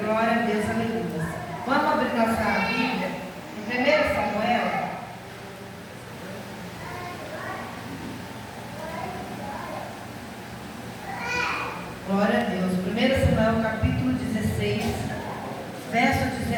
a Deus, aleluia. Vamos abrir nossa Bíblia em 1 Samuel. Glória a Deus. 1 Samuel, capítulo 16, verso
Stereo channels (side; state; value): both; identical; correlation 1.00